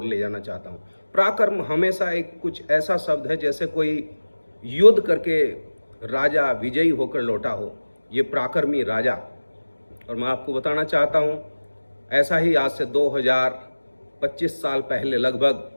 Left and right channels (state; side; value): inverted; both; correlation -1.00